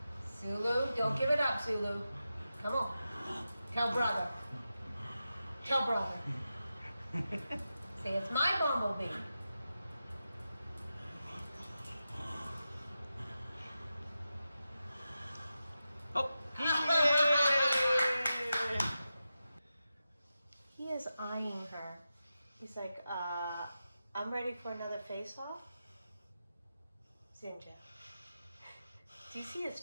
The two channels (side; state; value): both; inverted; correlation -0.91